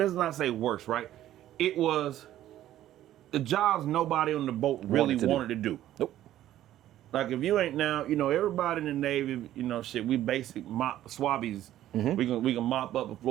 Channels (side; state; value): left; quieter; 12.9 dB